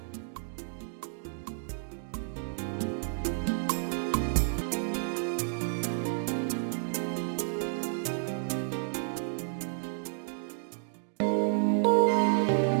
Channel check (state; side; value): silent; left; digital silence